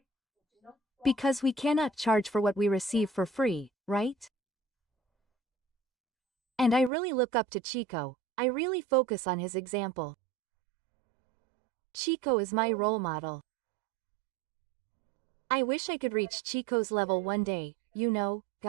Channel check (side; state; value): left; drops out; at 6.9 s